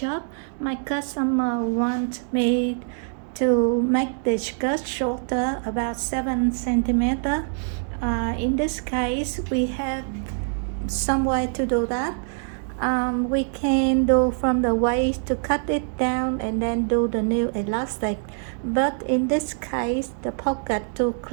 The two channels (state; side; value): silent; left; 62 dB below the other